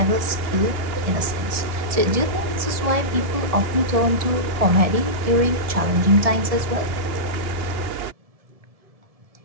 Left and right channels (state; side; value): late; left; 1.7 ms